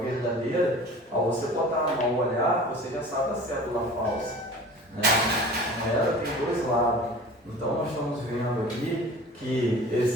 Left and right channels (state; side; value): normal; both; correlation 0.41